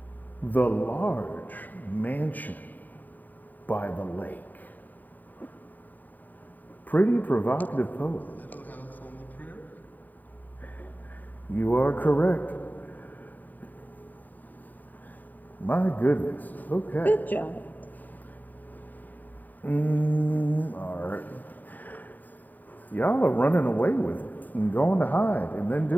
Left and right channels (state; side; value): late; right; 0.086 ms